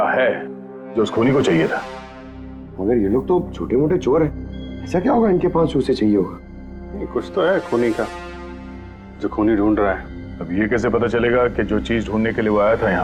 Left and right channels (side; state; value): both; identical; correlation 1.00